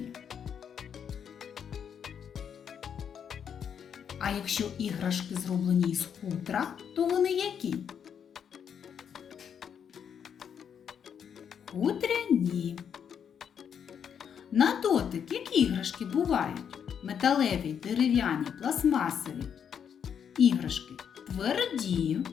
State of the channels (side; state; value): right; quieter; 7.9 dB